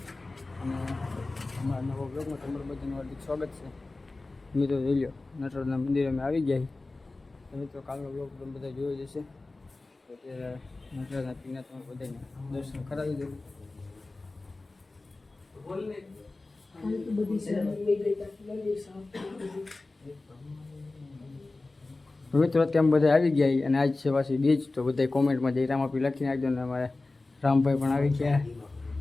અને અમારા નવો બ્લોગમાં તમારું બધાનું હાર્દિક સ્વાગત છે. મિત્રો જોઈ લો, નટરાજના મંદિરે અમે આવી ગયા. તો મિત્રો કાલનો બ્લોગ તમે બધા જોઈ જશે. તો અત્યારે નટરાજના પીના તમે બધાને દર્શન કરાવી દઉં. મિત્રો અત્યારે બધા આવી ગયા અને આજ છે પાછી બીજ. તો બધા કોમેન્ટમાં જય રામાપીર લખી નાખજો. ને અમારે રામભાઈ પણ આવી ગયા.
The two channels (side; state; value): right; quieter; 3.3 dB